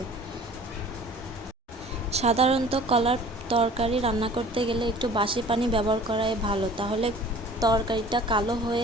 সাধারণত কলার তরকারি রান্না করতে গেলে একটু বাসি পানি ব্যবহার করাই ভালো, তাহলে তরকারিটা কালো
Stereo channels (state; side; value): normal; both; correlation 0.47